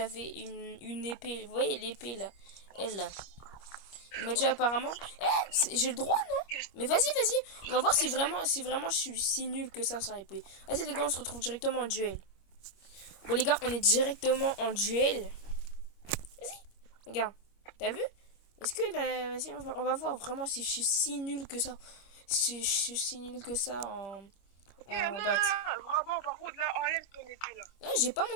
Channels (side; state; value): right; late; 25 ms